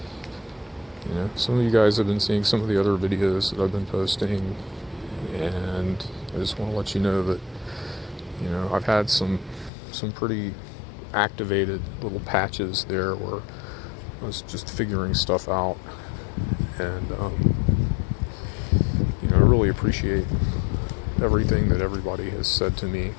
some of you guys have been seeing some of the other videos that I've been posting, and I just want to let you know that I've had some pretty activated little patches there where I was just figuring stuff out, and I really appreciate everything that everybody has said to me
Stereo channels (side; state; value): right; drops out; at 9.7 s